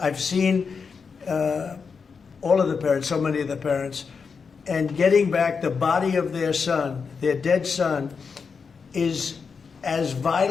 I've seen all of the parents, so many of the parents, and getting back the body of their son, their dead son, is as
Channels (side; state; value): right; quieter; 5.5 dB